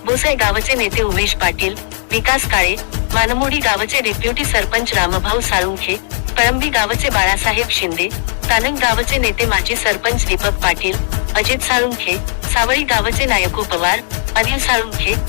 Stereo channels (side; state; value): right; silent; digital silence